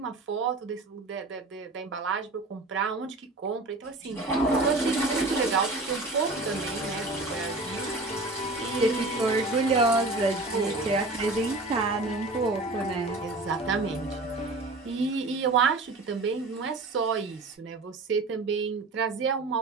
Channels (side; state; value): left; quieter; 3.1 dB